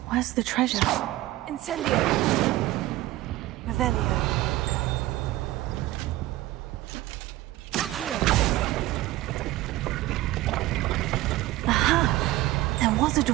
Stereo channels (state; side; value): quieter; left; 16.8 dB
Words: where's the treasure? Incendio. Revelio. Aha! There was a